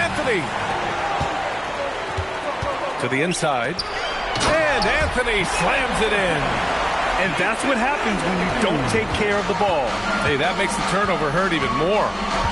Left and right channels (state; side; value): identical; both; correlation 1.00